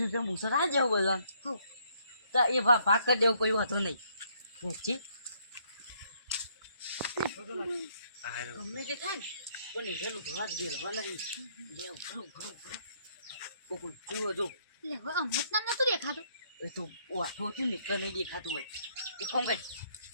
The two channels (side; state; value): both; inverted; correlation -0.69